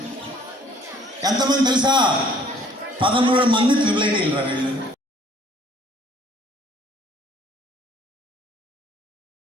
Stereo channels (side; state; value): both; normal; correlation 0.58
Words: ఎంతమంది తెలుసా? 13 మంది ట్రిపుల్ ఐటీలు రా వీళ్ళు.